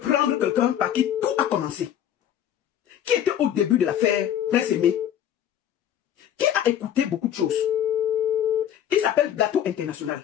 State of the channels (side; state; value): right; quieter; 10.3 dB